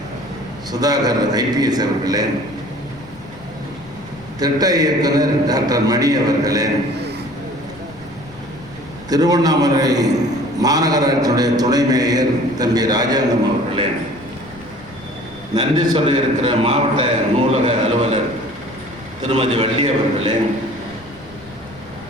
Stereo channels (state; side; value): noise; left; rumble, 22 dB below the sound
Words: சுதாகர் IPS அவர்களே, திட்ட இயக்குனர் டாக்டர் மணி அவர்களே, திருவண்ணாமலை மாநகராட்சியுடைய துணை மேயர் தம்பி ராஜாங்கம் அவர்களே, நன்றி சொல்ல இருக்கிற மாவட்ட நூலக அலுவலர் திருமதி வள்ளி அவர்களே,